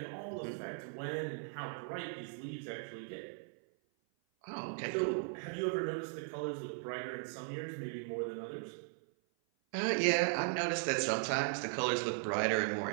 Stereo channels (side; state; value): left; silent; 52 dB below the other